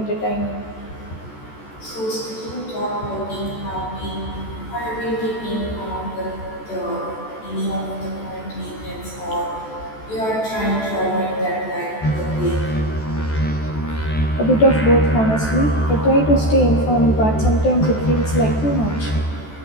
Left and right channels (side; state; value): right; late; 14 ms